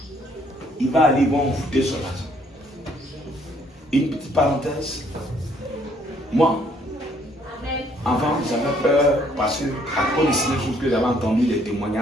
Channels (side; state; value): both; normal; correlation 0.65